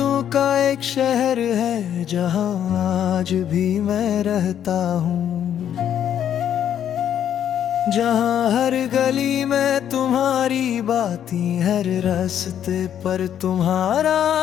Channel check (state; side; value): quieter; right; 9.8 dB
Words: का एक शहर है जहाँ आज भी मैं रहता हूँ, जहाँ हर गली में तुम्हारी बातें, हर रास्ते पर तुम्हारा